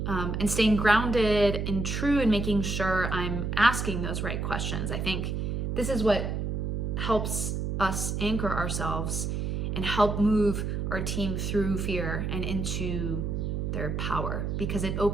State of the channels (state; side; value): noise; right; hum, 1 dB below the sound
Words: and staying grounded and true and making sure I'm asking those right questions. I think this is what helps us anchor ourselves and help move our team through fear and into their power, because it